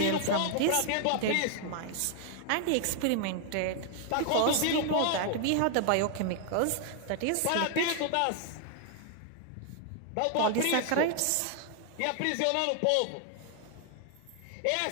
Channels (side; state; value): both; different; correlation 0.00